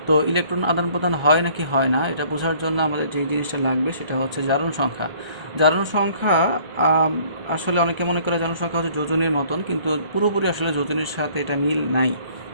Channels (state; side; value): late; left; 1.3 ms